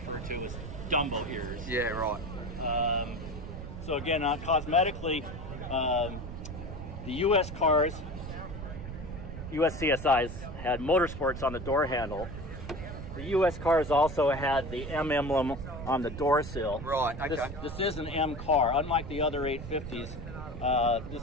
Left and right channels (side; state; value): right; noise; rumble, 9 dB below the sound